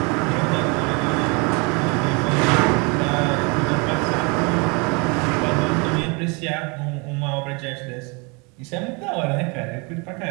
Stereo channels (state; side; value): quieter; left; 30.8 dB